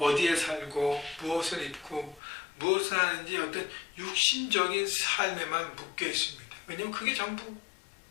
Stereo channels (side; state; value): right; drops out; at 2.2 s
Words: 살고 무엇을 입고 무엇을 하는지 어떤 육신적인 삶에만 묶여 있습니다. 왜냐하면 그게